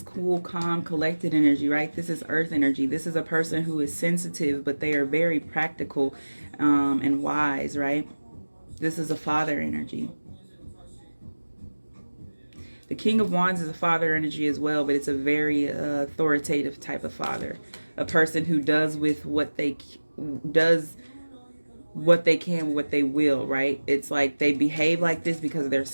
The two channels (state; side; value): inverted; both; correlation -1.00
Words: cool, calm, collected energy, right? This is earth energy. This is a person who is sensitive, but they are very practical and wise, right? This is a father energy. The King of Wands is a father energy as well, but it's a very authoritative type of father. A person who does with what they can, what they will, right? It's like they behave like this because of their